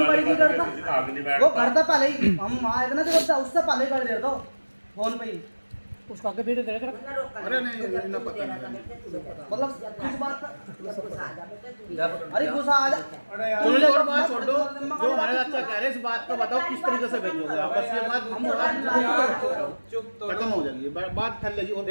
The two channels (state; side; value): inverted; both; correlation -1.00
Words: गाड़ी क्यों दे रहा था? वो घर था पहले ही, हम वहाँ आए थे ना तो उससे पहले ही गाड़ी दे रहा था फोन पे ही। उसका आगे वीडियो देख रहा। अरे नहीं इतना पता नहीं मतलब कुछ बात अरे गुस्सा आ जा। चलो और बात छोड़ दो, जो हमारे अच्छा कह रहे हैं इस बात को बताओ किस तरीके से भेजोगे आप, बस ये बात हम चुप तो खत्म हो जाएगी, बात फैल और